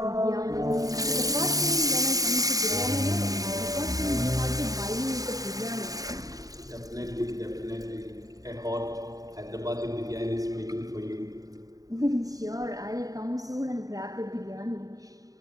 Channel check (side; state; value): left; late; 0.18 ms